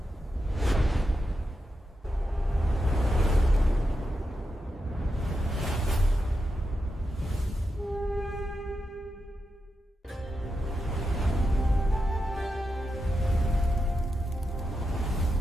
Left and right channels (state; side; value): normal; both; correlation 0.87